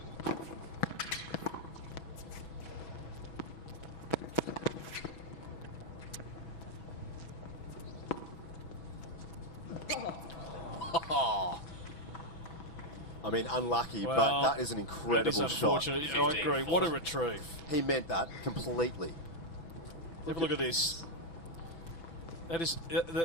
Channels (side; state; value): right; late; 5.9 ms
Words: I mean, unlucky, Well, but that is an incredible shot. I agree. What a retrieve. He meant that completely. Have a look at this. That is